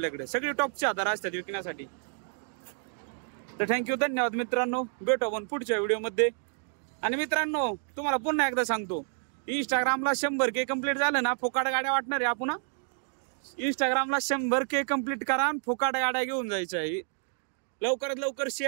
सगळे टॉपचे आधार असतात विकण्यासाठी। तर थँक्यू, धन्यवाद मित्रांनो। भेटू आपण पुढच्या व्हिडिओमध्ये। आणि मित्रांनो, तुम्हाला पुन्हा एकदा सांगतो, इंस्टाग्रामला 100K कंप्लीट झालं ना, फुकाट गाड्या वाटणार आहे आपण। इंस्टाग्रामला 100K कंप्लीट करा आणि फुकाट गाड्या घेऊन जायच्या आहे। लवकरात लवकर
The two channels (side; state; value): left; silent; 58 dB below the other